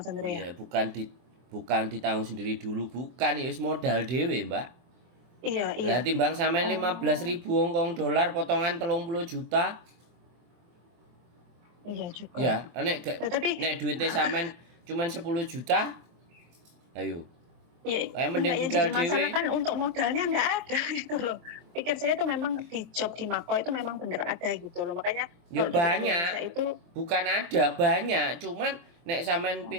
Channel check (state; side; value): late; left; 23 ms